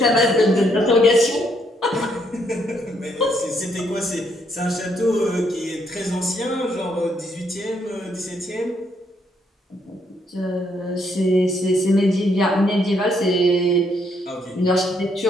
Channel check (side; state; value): both; normal; correlation 0.73